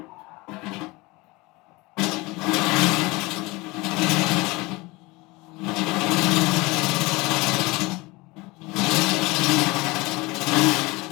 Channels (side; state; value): right; quieter; 23.2 dB